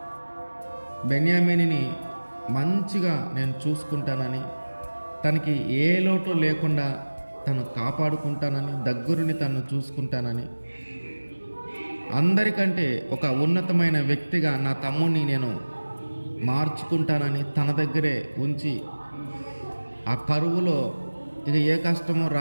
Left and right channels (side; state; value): both; inverted; correlation -1.00